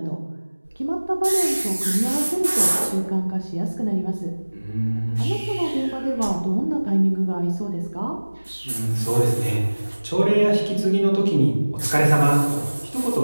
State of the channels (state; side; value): inverted; both; correlation -1.00